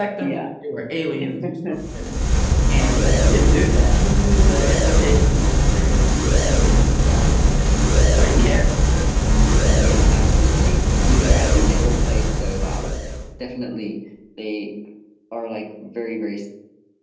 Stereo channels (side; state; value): both; identical; correlation 1.00